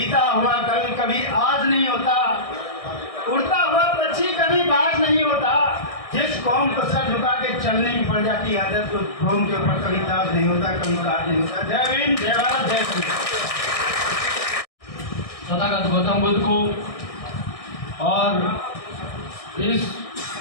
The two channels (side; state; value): right; late; 1.6 ms